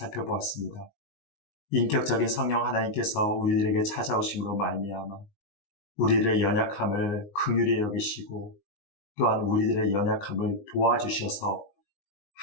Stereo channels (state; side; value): late; right; 19 ms